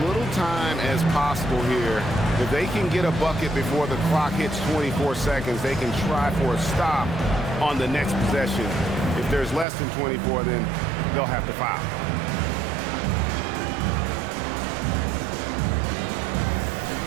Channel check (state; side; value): drops out; left; at 9.7 s